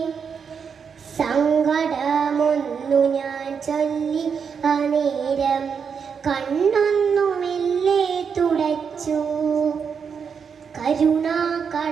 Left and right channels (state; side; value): quieter; left; 6.5 dB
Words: സങ്കടമൊന്നു ഞാൻ ചൊല്ലി അനേരം കണ്ണൊന്നു മെല്ലെ തുടച്ചു. കരുണാ